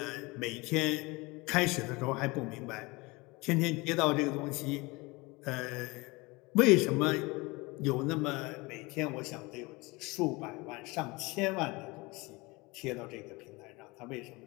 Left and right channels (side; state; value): right; quieter; 24.3 dB